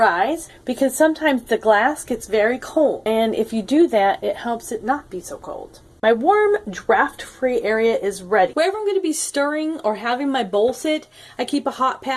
because sometimes the glass gets very cold, and if you do that, it helps it not be so cold. My warm, draft-free area is ready. Wherever I'm going to be stirring or having my bowl sit, I keep a hot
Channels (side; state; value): both; identical; correlation 1.00